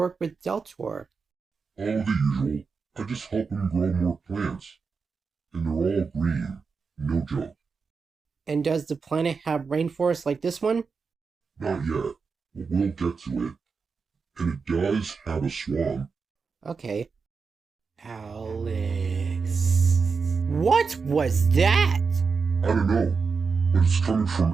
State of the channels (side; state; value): left; quieter; 5.1 dB